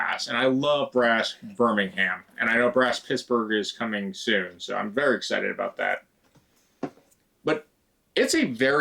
and I love Brass Birmingham, and I know Brass Pittsburgh is coming soon, so I'm very excited about that. But it's a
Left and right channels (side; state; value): both; identical; correlation 1.00